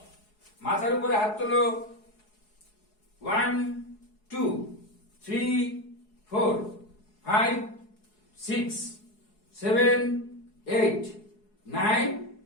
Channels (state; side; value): late; right; 4.7 ms